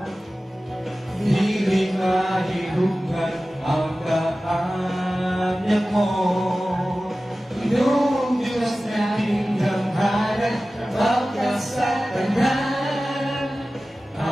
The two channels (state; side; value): normal; both; correlation 0.96